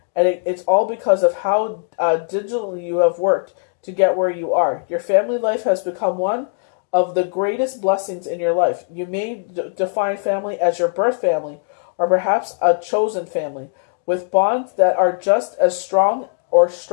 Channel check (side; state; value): right; silent; digital silence